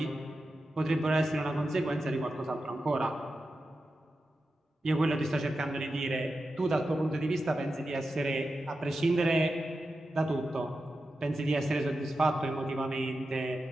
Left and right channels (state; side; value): normal; both; correlation 0.91